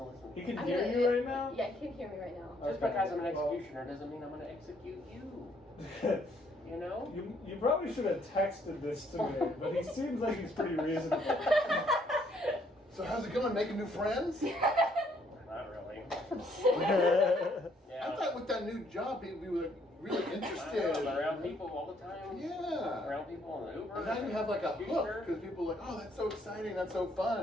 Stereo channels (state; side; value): normal; both; correlation 0.67